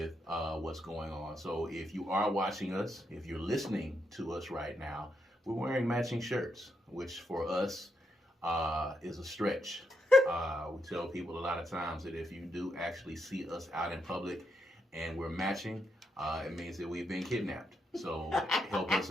what's going on. So if you are watching us, if you're listening to us right now, we're wearing matching shirts, which for us is a stretch. We tell people a lot of times that if you do actually see us out in public and we're matching, it means that we've been kidnapped. So help us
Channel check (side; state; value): both; normal; correlation 0.81